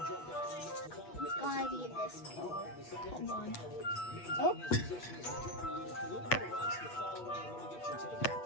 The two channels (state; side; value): late; right; 8.3 ms